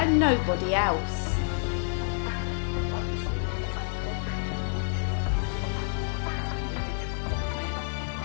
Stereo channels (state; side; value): silent; right; 59 dB below the other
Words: nobody else? Obviously, the most important thing on the Shroud of Turin is the image of a man,